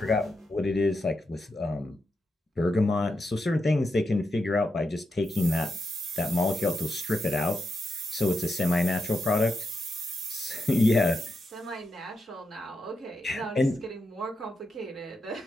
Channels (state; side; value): normal; both; correlation 0.86